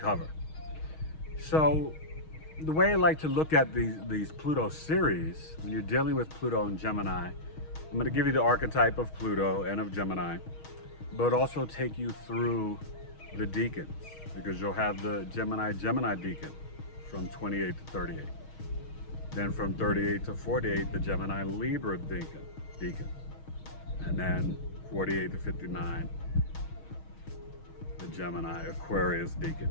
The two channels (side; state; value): right; late; 6.3 ms